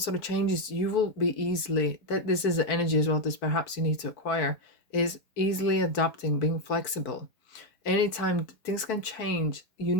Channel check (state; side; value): late; right; 4.5 ms